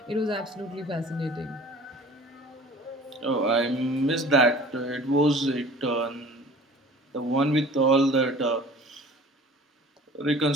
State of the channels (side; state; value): both; normal; correlation 0.45